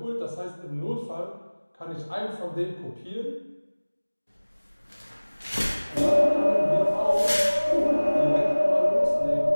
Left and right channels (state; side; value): inverted; both; correlation -1.00